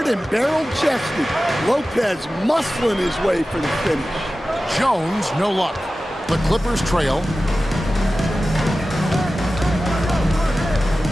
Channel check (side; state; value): both; normal; correlation 0.95